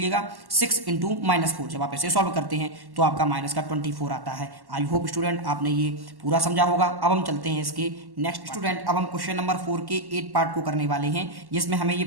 6 इंटू -4। जब आप इसे सॉल्व करते हैं तो आपका माइनस का 24 आता है। आई होप स्टूडेंट आपने ये पूरा समझा होगा। अब हम चलते हैं इसके नेक्स्ट। स्टूडेंट अब हम क्वेश्चन नंबर 4 के 8 पार्ट को करने वाले हैं, जिसमें हमें ये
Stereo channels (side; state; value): left; late; 1.1 ms